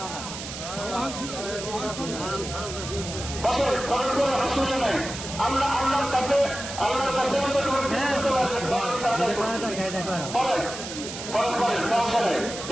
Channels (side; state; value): right; noise; hiss, 9 dB below the sound